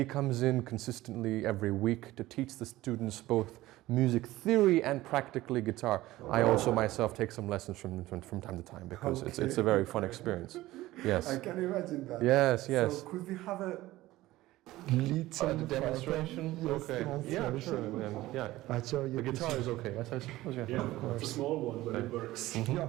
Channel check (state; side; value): quieter; left; 17.0 dB